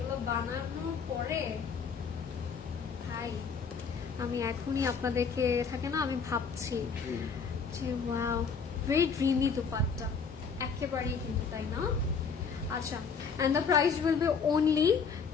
বানানোর পরে ভাই আমি এখনই আপনাদেরকে থাকে না আমি ভাবছি যে ওয়াও ভেরি ড্রিমি দুপাট্টা একেবারেই কিন্তু তাই না আচ্ছা and the price will be only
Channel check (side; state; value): right; quieter; 5.7 dB